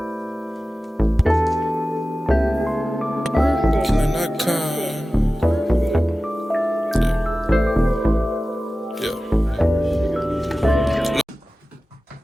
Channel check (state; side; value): normal; both; correlation 0.96